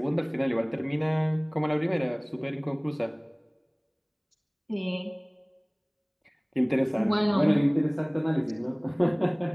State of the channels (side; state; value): both; identical; correlation 1.00